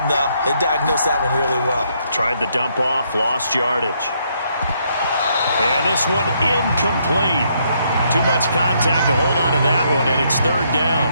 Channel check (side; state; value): both; inverted; correlation -0.73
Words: though. They diagnosed that one really well. Tried the dump off, lost yardage. And this one incomplete. Too much contact to hold on to that one, and it's 3rd down.